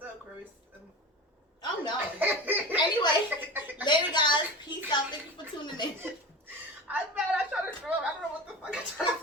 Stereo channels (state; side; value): normal; both; correlation 0.30